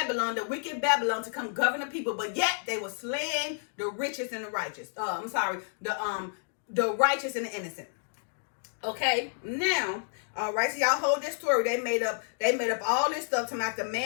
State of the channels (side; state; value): right; silent; digital silence